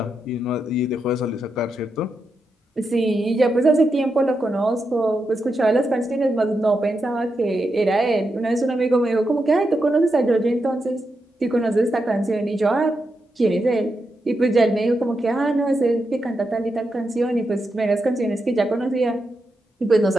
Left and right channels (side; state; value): both; normal; correlation 0.86